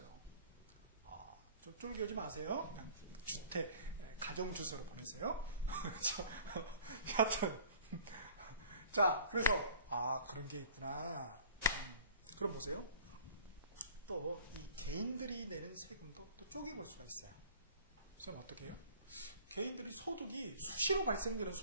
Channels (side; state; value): both; inverted; correlation -0.49